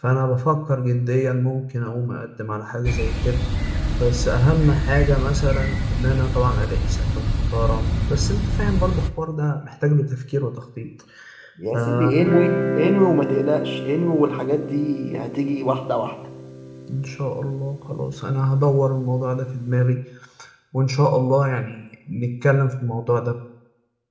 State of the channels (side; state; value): both; identical; correlation 1.00